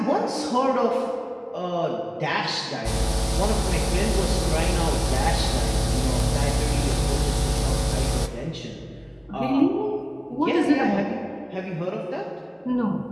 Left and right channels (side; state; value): both; identical; correlation 1.00